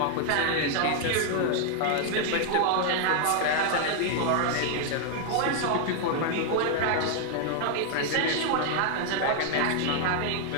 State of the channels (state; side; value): different; both; correlation 0.00